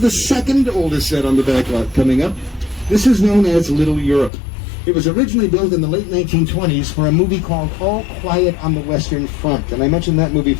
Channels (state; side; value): drops out; right; at 4.3 s